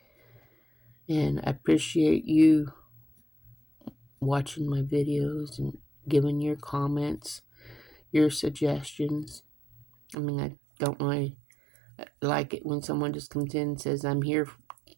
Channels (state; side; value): drops out; left; at 10.2 s